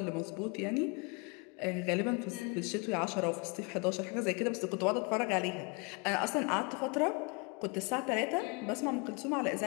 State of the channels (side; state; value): right; quieter; 30.6 dB